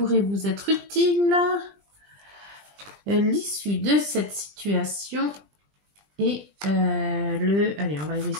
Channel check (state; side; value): late; left; 20 ms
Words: vous être utiles, l'issue de cette situation et allez, on va